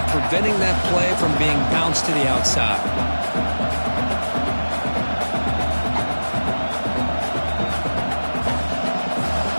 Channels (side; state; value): both; inverted; correlation -1.00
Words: preventing that play from being bounced to the outside.